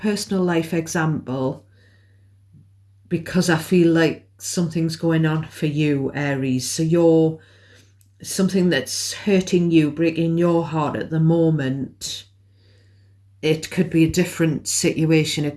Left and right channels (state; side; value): identical; both; correlation 1.00